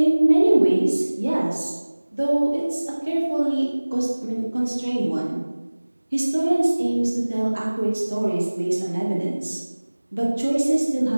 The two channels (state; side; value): inverted; both; correlation -1.00